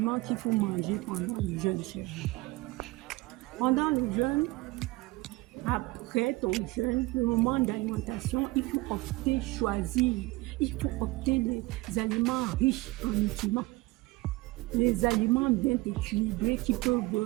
qu'il faut manger pendant le jeûne, chérie? Pendant le jeûne, après ton jeûne, le moment d'alimentation, il faut choisir. Il faut opter les aliments riches en nutriments. Les aliments bien équilibrés qui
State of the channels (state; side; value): quieter; left; 21.4 dB